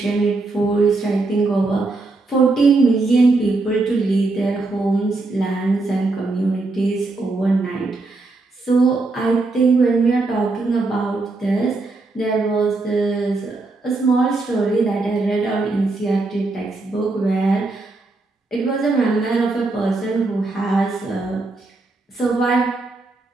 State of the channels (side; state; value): left; quieter; 3.4 dB